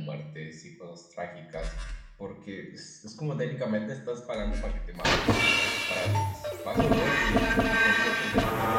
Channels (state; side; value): identical; both; correlation 1.00